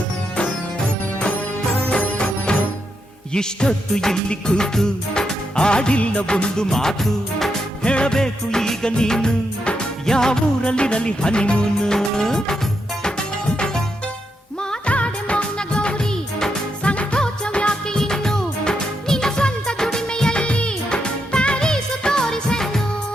ಇಷ್ಟೊತ್ತು ಇಲ್ಲಿ ಕೂತು ಆಡಿಲ್ಲ ಒಂದು ಮಾತು ಹೇಳಬೇಕು ಈಗ ನೀನು ಯಾವೂರಲ್ಲಿರಲಿ ಹನಿಮೂನು ಮಾತಾಡೆ ಮೌನ ಗೌರಿ ಸಂಕೋಚವ್ಯಾಕೆ ಇನ್ನು ನಿನ್ನ ಸ್ವಂತ ದುಡಿಮೆಯಲ್ಲಿ ಪ್ಯಾರೀಸು ತೋರಿಸನ್ನು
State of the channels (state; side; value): normal; both; correlation 0.82